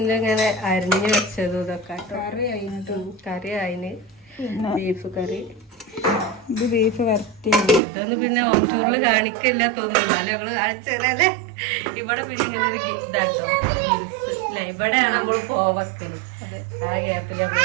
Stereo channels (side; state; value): left; drops out; at 7.8 s